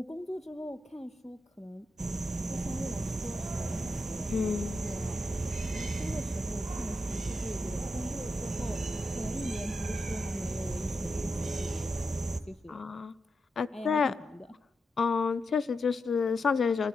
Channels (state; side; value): normal; both; correlation 0.86